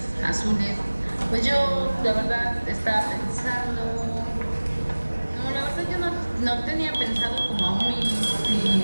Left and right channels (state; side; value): inverted; both; correlation -1.00